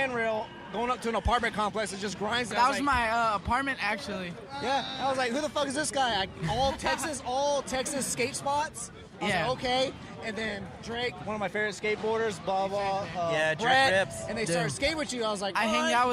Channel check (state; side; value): identical; both; correlation 1.00